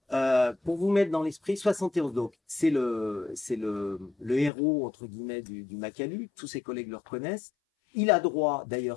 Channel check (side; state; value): right; drops out; at 4.5 s